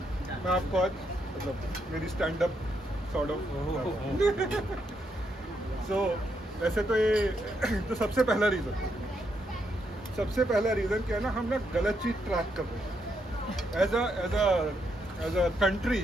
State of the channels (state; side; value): normal; both; correlation 0.78